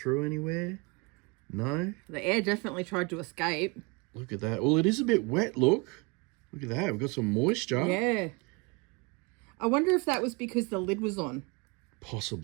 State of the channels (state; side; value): quieter; left; 28.1 dB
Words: anywhere? No? The air definitely tried to escape. Look at that. Well, it is a bit wet, look. Look at that. We've got some moisture. Yeah. I wonder if that was because the lid was on.